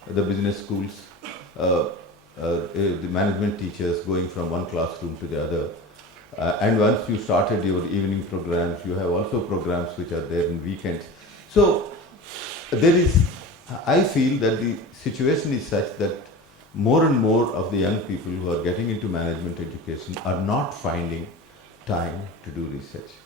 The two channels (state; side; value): normal; both; correlation 0.33